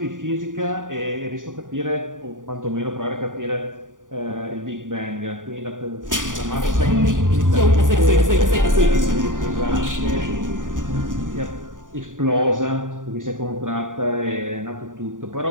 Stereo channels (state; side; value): late; left; 0.88 ms